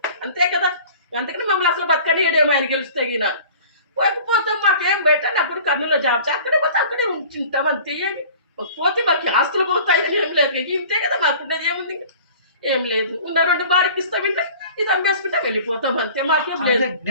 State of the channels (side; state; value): both; inverted; correlation -0.45